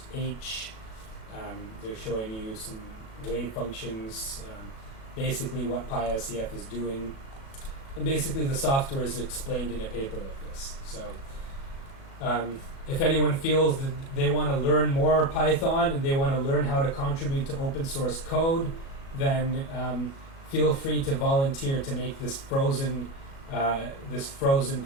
H. They're showing you some wave functions, basically what PySCF is doing. And basically the software is explained in a paper like this. So if anyone feels that they want to learn more Python and they want to learn how to contribute to open source code, then feel free to volunteer to make this frozen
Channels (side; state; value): right; late; 37 ms